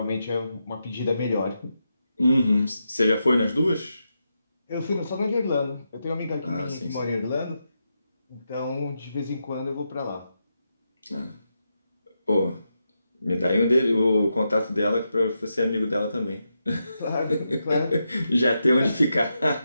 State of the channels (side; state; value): both; inverted; correlation -0.86